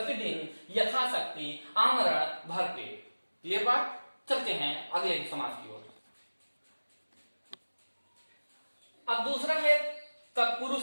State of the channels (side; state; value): both; inverted; correlation -1.00